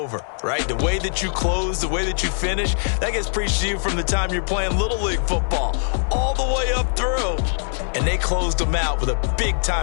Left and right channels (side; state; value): right; silent; digital silence